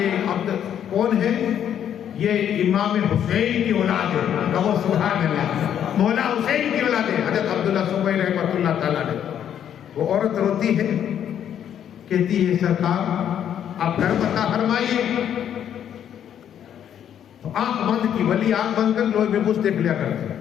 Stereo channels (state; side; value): quieter; right; 9.6 dB